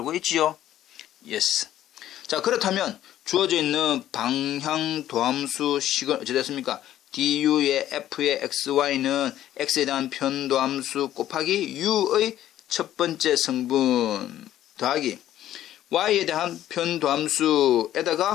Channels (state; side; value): quieter; right; 12.4 dB